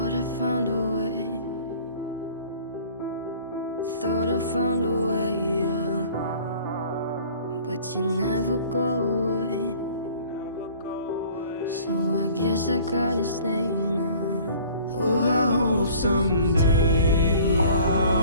I found a way. Thought I found a way, yeah. But you never go away. So I guess I gotta stay now. Oh, I hope someday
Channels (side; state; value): both; inverted; correlation -0.50